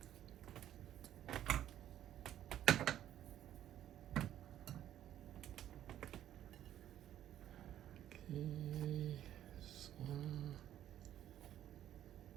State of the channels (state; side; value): quieter; left; 11.6 dB